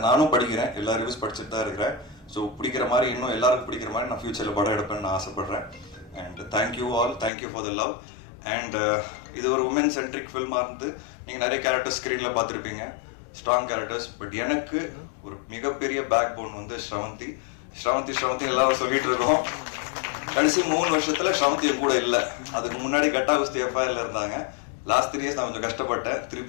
நானும் படிக்கிறேன், எல்லா ரிவ்யூஸ் படிச்சுட்டு தான் இருக்கிறேன். ஸோ பிடிக்கிற மாதிரி இன்னும் எல்லாருக்கும் பிடிக்கிற மாதிரி நான் ஃபியூச்சர்ல படம் எடுப்பேன்னு நான் ஆசைப்படுறேன். And thank you all, thank you for the love. And இது ஒரு உமன் சென்ட்ரிக் ஃபில்மா இருந்து நீங்க நிறைய கேரக்டர்ஸ் ஸ்கிரீன்ல பார்த்துருப்பீங்க, ஸ்ட்ராங் கேரக்டர்ஸ். பட் எனக்கு ஒரு மிகப்பெரிய பேக் போன் வந்து ஸ்ரவந்தி. எல்லாரும் சொல்லிட்டு இருக்கோம். கடைசி 3 வருஷத்துல ஸ்ரவந்தி கூட இல்லை. அதுக்கு முன்னாடி கட்டா குஸ்தி எஃப்ஐஆர்ல இருந்தாங்க. லாஸ்ட் 3 இயர்ஸ் நான் கொஞ்சம் கஷ்டப்பட்டேன்.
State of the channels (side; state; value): right; drops out; at 7.3 s